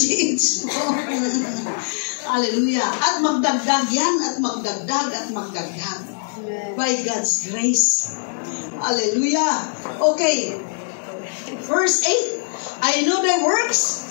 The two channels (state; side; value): silent; right; digital silence